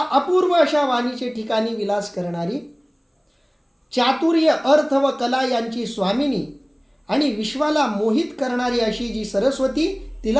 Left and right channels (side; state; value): both; identical; correlation 1.00